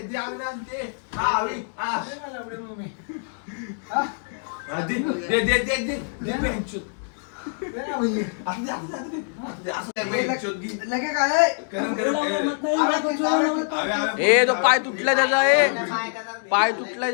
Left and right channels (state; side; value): silent; right; digital silence